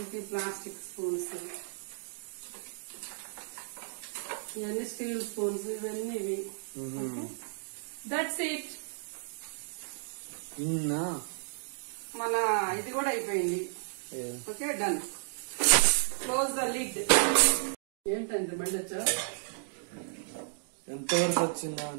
ప్లాస్టిక్ స్పూన్స్. ఇవన్నీ స్టీల్ స్పూన్స్, ఇవన్నీ ఇవి. That's it. మన ఇది కూడా అయిపోయింది. Okay, done. Close the lid. ఏంటండి బండి వచ్చా? ఎంతవరకు వచ్చిందా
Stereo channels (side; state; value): left; silent; digital silence